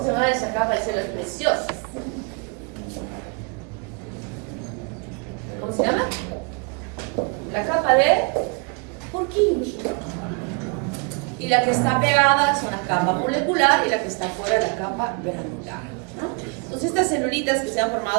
se llama esa capa de células preciosas? ¿Cómo se llama? La capa de Purkinje. Y la que está pegada es una capa molecular y la que está fuera es la capa granular, ¿no? Entonces estas celulitas que se han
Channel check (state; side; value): quieter; left; 34.2 dB